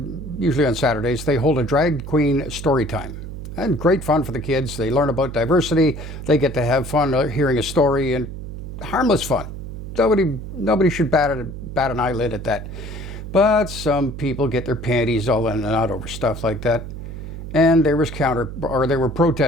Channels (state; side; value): noise; right; hum, 9 dB below the sound